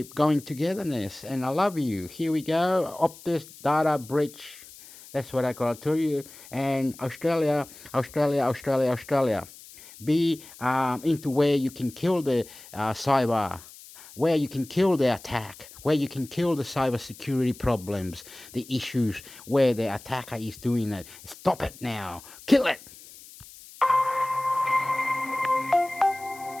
going togetherness. And I love you. Here we go. Optus data breach. That's what I got to tell you. And Australia. Be into where you can kill the cyber, where you can kill the attack, where you can kill the cybersecurity problems, the issues where the attacker is doing it. Stop it now. Kill it.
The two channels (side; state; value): left; noise; hiss, 19 dB below the sound